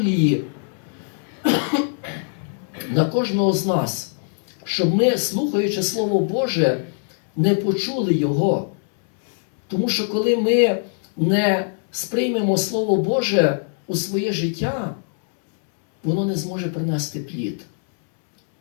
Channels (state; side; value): silent; right; 64 dB below the other